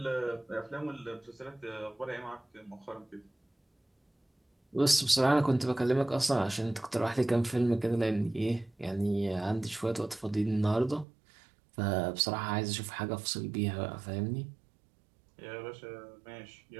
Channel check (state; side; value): drops out; left; at 11.1 s